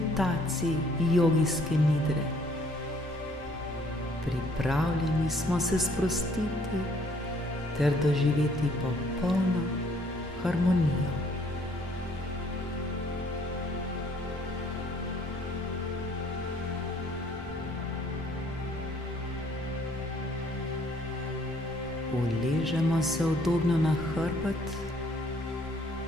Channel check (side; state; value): both; normal; correlation 0.62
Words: jogijske nidre. Pripravljeni smo se sprostiti ter doživeti popolno harmonijo. Uležemo se udobno na hrbet,